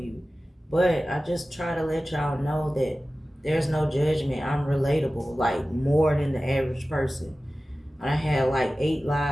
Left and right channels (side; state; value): both; normal; correlation 0.96